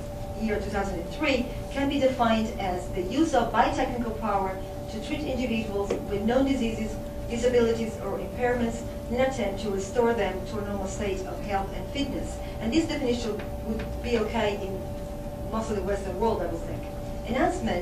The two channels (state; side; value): identical; both; correlation 1.00